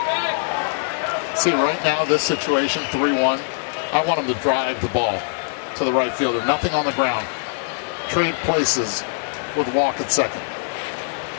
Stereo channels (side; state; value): right; silent; digital silence